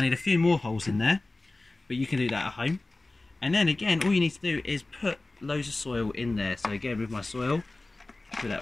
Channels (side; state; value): right; quieter; 3.0 dB